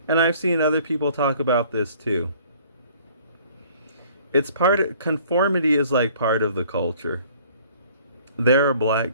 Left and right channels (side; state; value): both; inverted; correlation -0.55